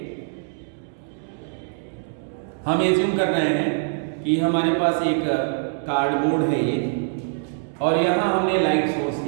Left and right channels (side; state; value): left; silent; 63 dB below the other